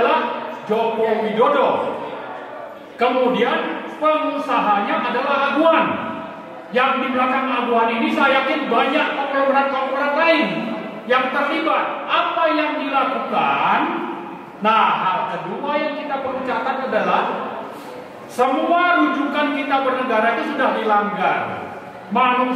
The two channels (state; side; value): identical; both; correlation 1.00